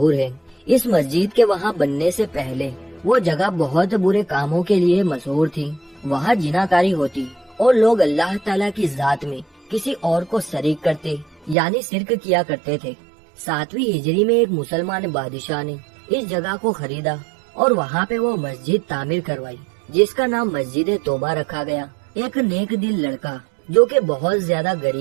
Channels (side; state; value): left; drops out; at 11.6 s